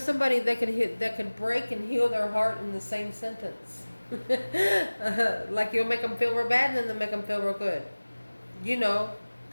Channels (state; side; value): inverted; both; correlation -1.00